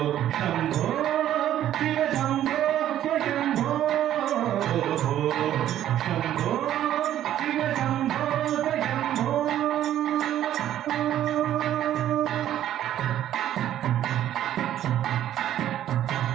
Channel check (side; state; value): left; quieter; 11.8 dB